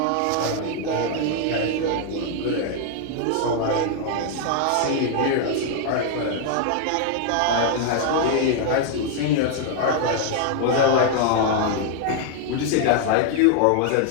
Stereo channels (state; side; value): different; both; correlation 0.00